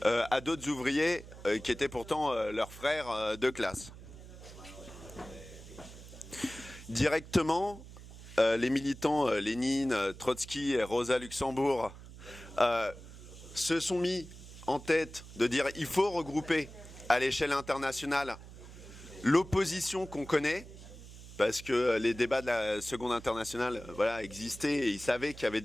à d'autres ouvriers qui étaient pourtant leurs frères de classe. Directement, les militants Lénine, Trotsky et Rosa Luxembourg se sont mis en tête de dire il faut regrouper à l'échelle internationale l'opposition qu'on connaît, parce que les débats de la Seconde Internationale voilà, existaient et ils savaient qu'il y avait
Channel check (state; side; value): noise; right; hum, 16 dB below the sound